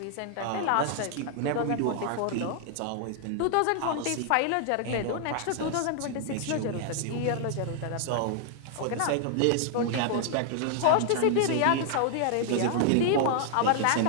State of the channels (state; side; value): different; both; correlation 0.00